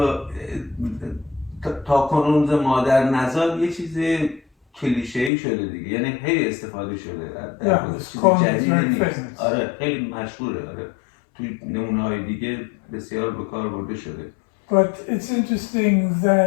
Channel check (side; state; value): right; drops out; at 5.3 s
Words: تا کنون مادر نزاد یه چیز کلیشه‌ای شده دیگه، یعنی خیلی استفاده شده. Yeah, this جدید نیست. famous. آره خیلی مشهوره. آره توی نمونه‌های دیگه بسیار به کار برده شده. But it's interesting